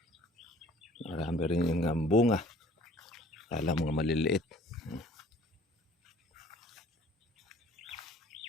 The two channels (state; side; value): normal; both; correlation 0.53